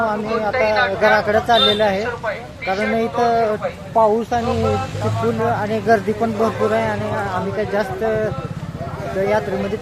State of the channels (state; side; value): identical; both; correlation 1.00